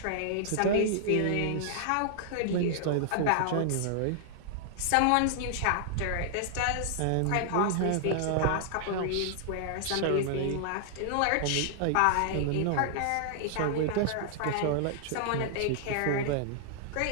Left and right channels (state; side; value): different; both; correlation -0.01